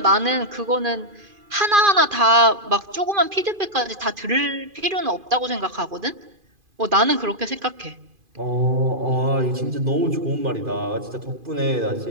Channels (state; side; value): late; left; 2.5 ms